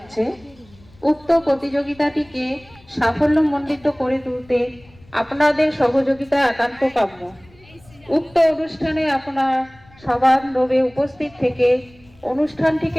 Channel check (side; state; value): left; noise; rumble, 27 dB below the sound